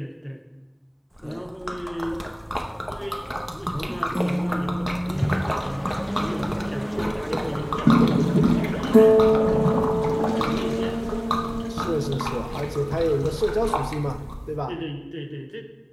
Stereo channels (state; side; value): identical; both; correlation 1.00